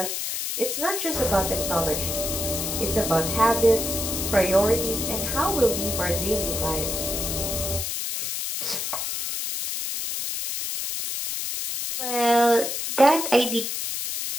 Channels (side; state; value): left; noise; hiss, 3 dB below the sound